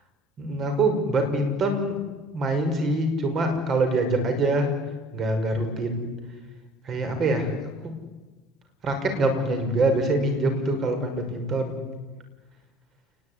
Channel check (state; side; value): normal; both; correlation 0.53